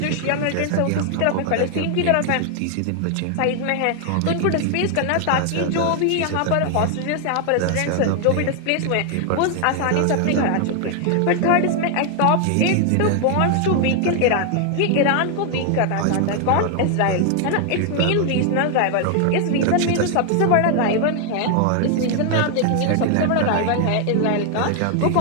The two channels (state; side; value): different; both; correlation 0.00